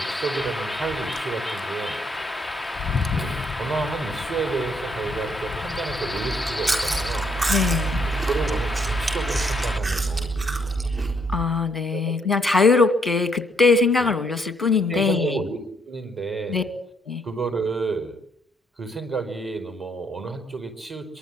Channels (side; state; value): both; normal; correlation 0.72